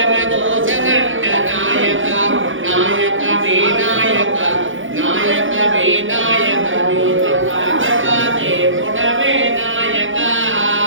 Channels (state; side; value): late; left; 0.57 ms